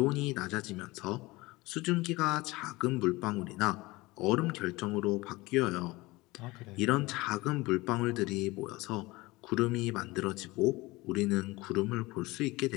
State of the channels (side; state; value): right; quieter; 21.5 dB